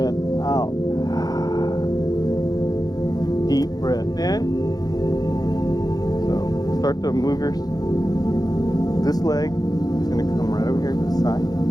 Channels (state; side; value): late; right; 0.19 ms